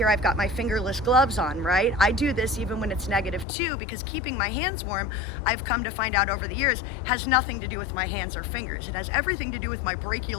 I've got my fingerless gloves on, right? I do this even when it's -2 because keeping my hands warm, I've come to find out over the years, has nothing to do with my hands or fingers. It has everything to do with my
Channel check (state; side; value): drops out; right; at 3.5 s